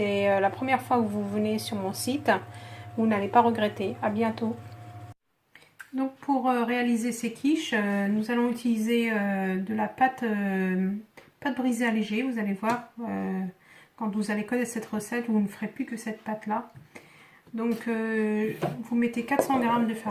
la première fois que vous venez sur mon site. Vous n'allez pas regretter. À bientôt. Donc pour réaliser ces quiches, nous allons utiliser de la pâte brisée allégée. Vous allez voir, quand vous allez connaître cette recette, vous ne ferez plus que cette pâte là. Donc vous mettez 400 g de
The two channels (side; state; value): both; identical; correlation 1.00